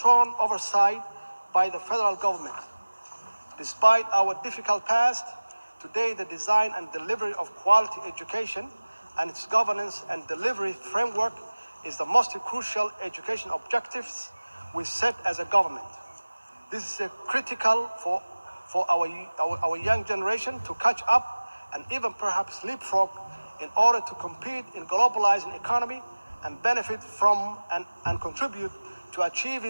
oversight by the federal government. Despite our difficult past, today the design and delivery of quality education and its governance and delivery framework is the most crucial education objectives we set as a government. This is critical for our young generation to catch up and even perhaps leapfrog in order to compete in globalizing economy and benefit from and contribute to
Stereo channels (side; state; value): both; inverted; correlation -1.00